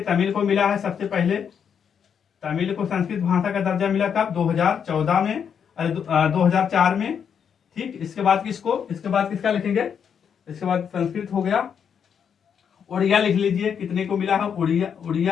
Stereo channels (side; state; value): right; quieter; 7.5 dB